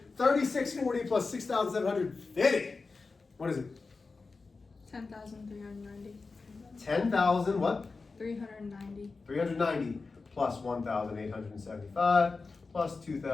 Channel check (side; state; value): right; quieter; 4.1 dB